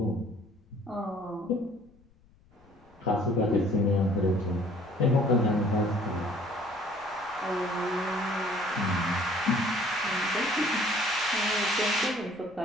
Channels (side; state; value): left; noise; rumble, 29 dB below the sound